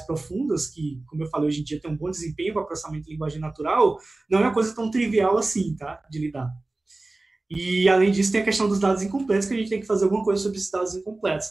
que, como eu falei, hoje em dia tem um bom desempenho para processamento de linguagem natural, não é uma coisa tão trivial assim, tá, de lidar. E, além disso, tem a questão dos dados incompletos, que a gente tem que fazer alguma coisa sobre esses dados incompletos,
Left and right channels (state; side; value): quieter; left; 3.0 dB